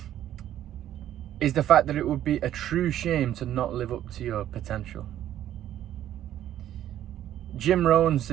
is the fact that it would be a true shame to not live up to your potential. Jim Rohn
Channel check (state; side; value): quieter; left; 11.8 dB